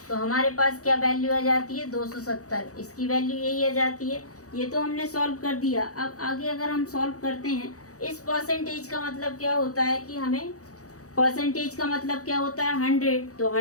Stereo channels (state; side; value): late; right; 0.66 ms